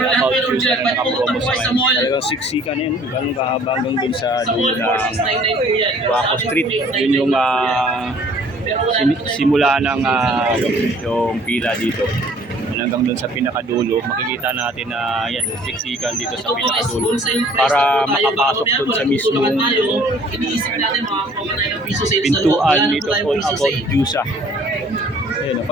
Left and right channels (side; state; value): both; normal; correlation 0.55